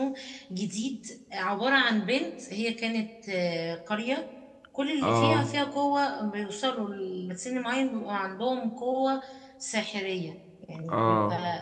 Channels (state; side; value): identical; both; correlation 1.00